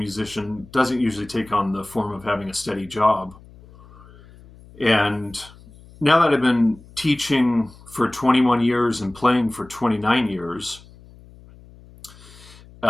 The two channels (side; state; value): left; noise; hum, 23 dB below the sound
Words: doesn't usually take on the form of having a steady job. And now that I've been teaching for 21 years and playing for 29 years,